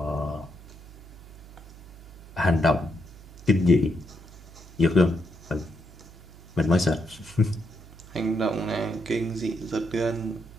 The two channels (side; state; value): right; noise; hum, 19 dB below the sound